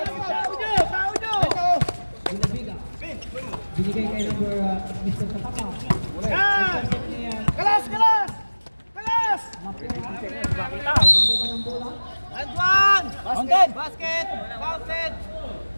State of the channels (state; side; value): inverted; both; correlation -1.00